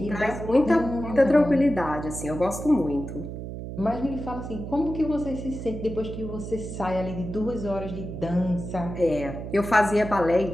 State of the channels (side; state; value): right; noise; hum, 8 dB below the sound